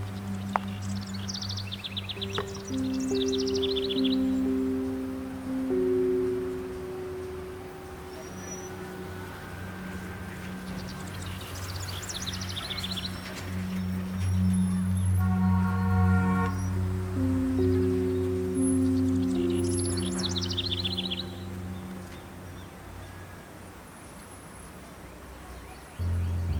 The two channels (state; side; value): identical; both; correlation 1.00